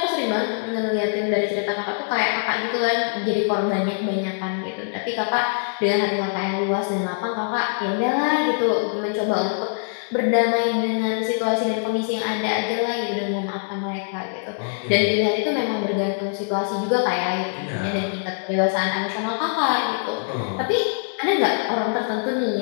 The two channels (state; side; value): silent; right; digital silence